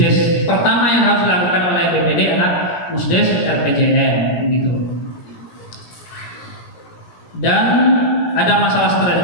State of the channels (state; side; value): late; right; 17 ms